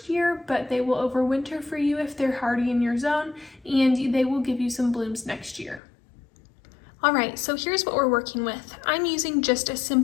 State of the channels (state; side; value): drops out; right; at 5.8 s